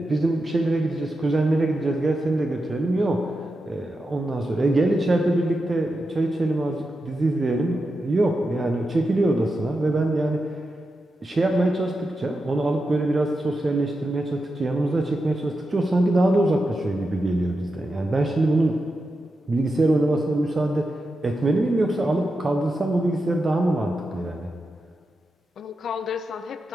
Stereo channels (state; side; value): normal; both; correlation 0.89